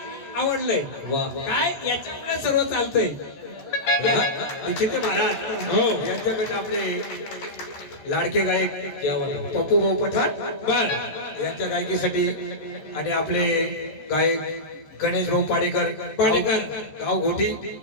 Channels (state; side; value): late; right; 14 ms